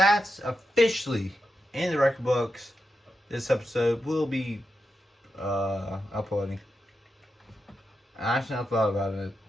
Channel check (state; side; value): normal; both; correlation 0.87